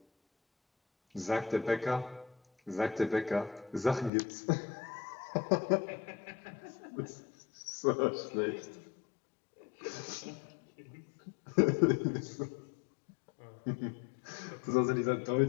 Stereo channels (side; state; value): right; drops out; at 4.1 s